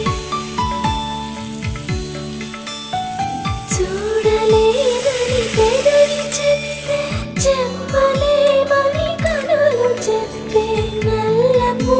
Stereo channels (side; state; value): both; identical; correlation 1.00